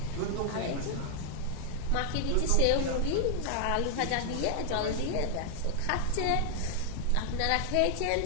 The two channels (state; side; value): different; both; correlation 0.00